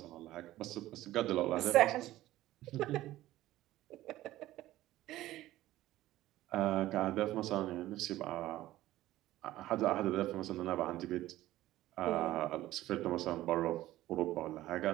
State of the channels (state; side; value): quieter; left; 15.5 dB